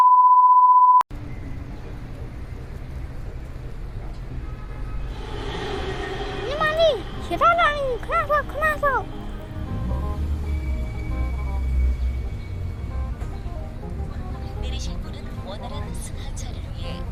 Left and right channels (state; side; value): identical; both; correlation 1.00